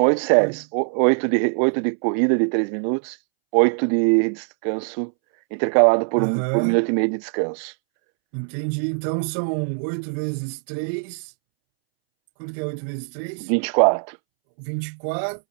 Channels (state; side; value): silent; left; 64 dB below the other